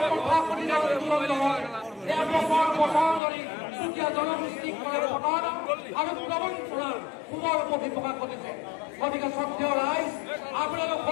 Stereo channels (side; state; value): right; drops out; at 3.2 s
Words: প্ৰকাশ কৰি আন্দোলন নহয় এয়া বছৰ বছৰ ধৰি চুতীয়া জনগোষ্ঠীক কৰে প্ৰতাৰণা আৰু প্ৰবঞ্চনাৰ পুনৰ প্ৰকাশ কৰিছে গতিকে শ্ৰদ্ধেয় ৰাইজ আপোনালোক